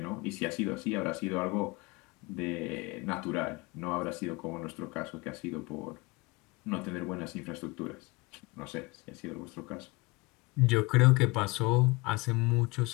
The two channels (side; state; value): right; quieter; 24.9 dB